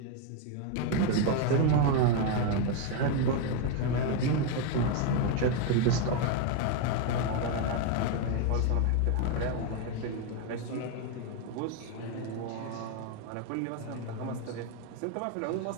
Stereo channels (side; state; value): both; different; correlation 0.01